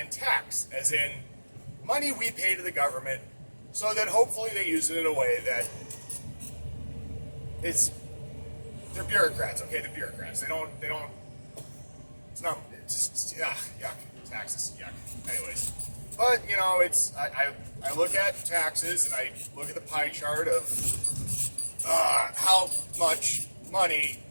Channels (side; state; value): both; inverted; correlation -1.00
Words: tax, as in money we pay to the government so that hopefully they use it in a way that they're bureaucrats, okay? They're bureaucrats. They don't, it's just, yuck. Taxes, yuck. Anyways. But, you know, I look at taxes and I look at the pie chart of how much money